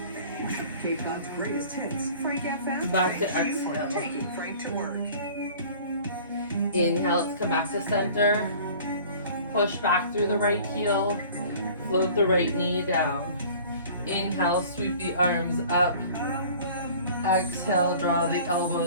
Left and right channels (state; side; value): inverted; both; correlation -0.47